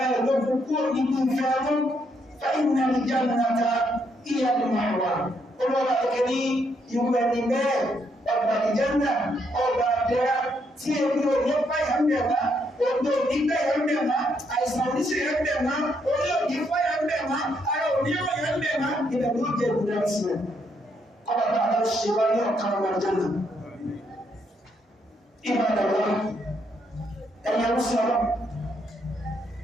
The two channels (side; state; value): both; normal; correlation 0.75